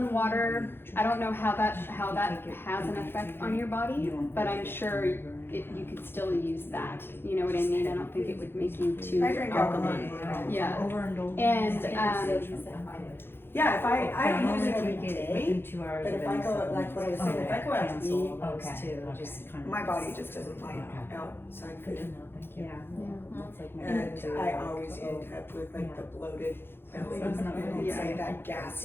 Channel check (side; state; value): right; late; 0.11 ms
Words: water, I don't know how that has an effect on your body, but I'm sure you could still use that. You know what I mean? I don't think it would make you too I drink alkaline water. Yeah. And Yeah, if I don't use it every 2 hours. But of if I any go, like supplements. what I was saying, if I go out to Cancel eat, those Okay. two, Okay. just kind of. my body just doesn't like Okay. outside Good to food. know, thank you. Yeah. That's like my And go-to, I like, always end up with like Yeah. the bloated belly, It's not and really- it's like that